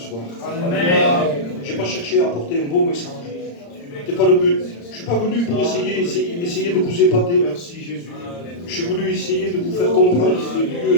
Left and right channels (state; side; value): late; right; 35 ms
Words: Je n'ai pas cherché à apporter un beau message. Ce n'était pas le but. Je ne suis pas venu pour essayer de vous épater. Merci Jésus. Je suis venu essayer de vous faire comprendre que Dieu